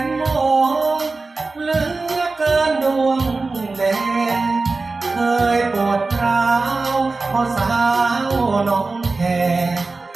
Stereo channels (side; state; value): left; quieter; 3.7 dB